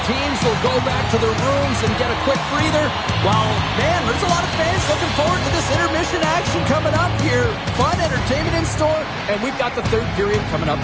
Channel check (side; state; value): both; identical; correlation 1.00